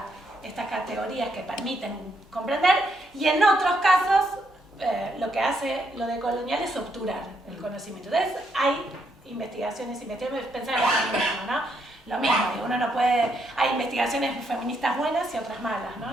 estas categorías que permiten comprender, y en otros casos lo que hace lo decolonial es obturar el conocimiento. Entonces hay investigaciones, pensar en lo mismo, ¿no? Lo mismo, uno no puede, hay investigaciones feministas buenas y otras malas,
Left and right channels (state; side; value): normal; both; correlation 0.76